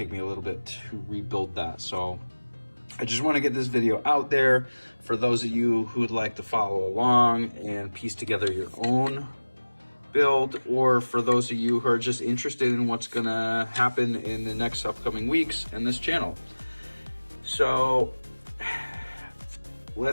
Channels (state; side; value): inverted; both; correlation -1.00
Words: me a little bit to rebuild that. So I just want to get this video out there for those of you who would like to follow along and piece together your own build, or for those of you who are just interested in what's going to happen in the next upcoming weeks in this channel. So